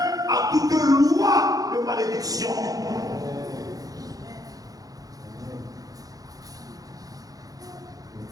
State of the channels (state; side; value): late; left; 0.18 ms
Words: à toute loi de malédiction.